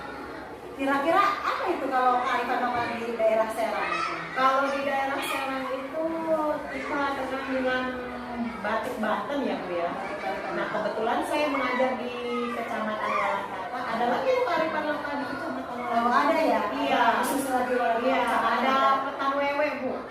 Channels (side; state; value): both; identical; correlation 1.00